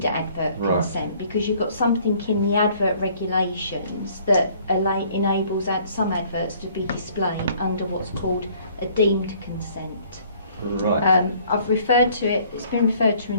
advert consent because you've got something in the advert regulations that enables some adverts to be displayed under what's called a deemed consent. Right. I've referred to it, it's been referred to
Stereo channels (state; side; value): inverted; both; correlation -0.58